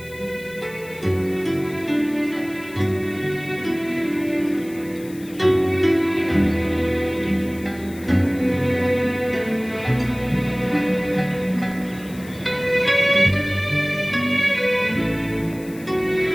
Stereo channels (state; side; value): noise; left; hiss, 21 dB below the sound